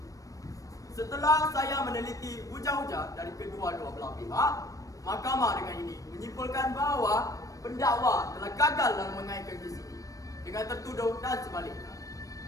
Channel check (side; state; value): right; late; 0.16 ms